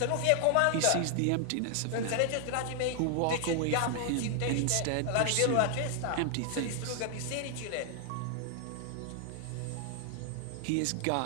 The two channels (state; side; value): different; both; correlation 0.00